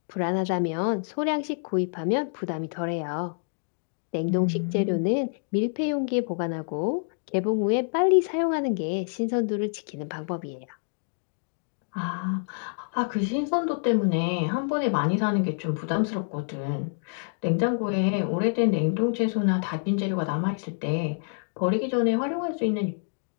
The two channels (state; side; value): silent; right; digital silence